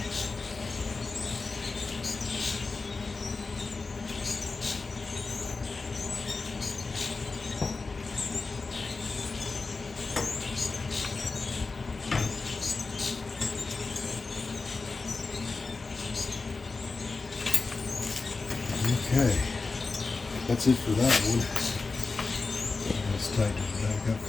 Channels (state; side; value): quieter; right; 4.0 dB